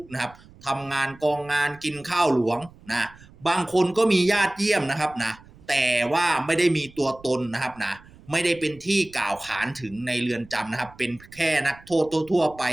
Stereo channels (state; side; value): noise; right; rumble, 24 dB below the sound